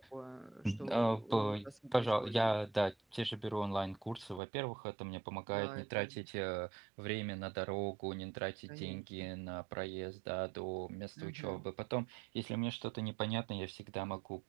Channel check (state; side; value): drops out; left; at 4.4 s